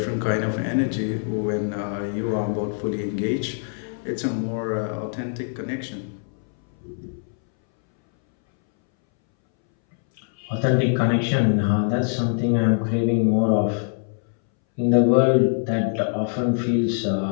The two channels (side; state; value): right; silent; 62 dB below the other